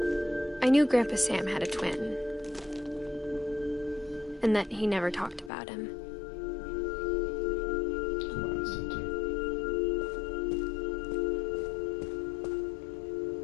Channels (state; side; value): drops out; right; at 5.5 s